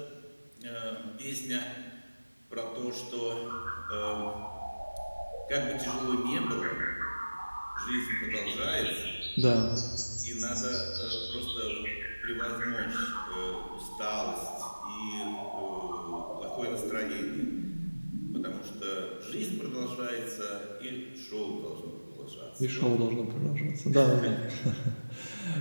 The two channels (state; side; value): inverted; both; correlation -1.00